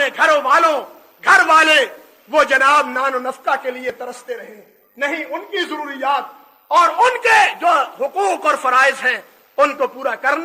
گھر والے وہ جناب نان و نفقہ کے لیے ترستے رہیں. نہیں، ان کی ضروریات اور ان کے جو حقوق اور فرائض ہیں ان کو پورا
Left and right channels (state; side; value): identical; both; correlation 1.00